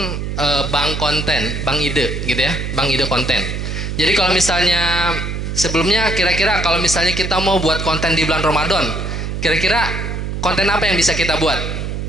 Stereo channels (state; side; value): noise; right; hum, 4 dB below the sound